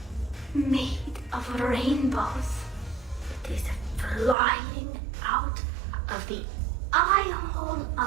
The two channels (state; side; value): drops out; left; at 4.4 s